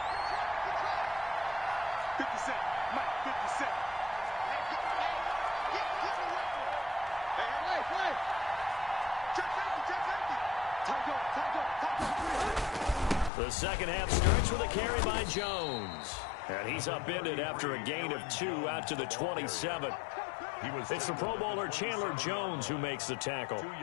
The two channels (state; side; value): drops out; right; at 13.3 s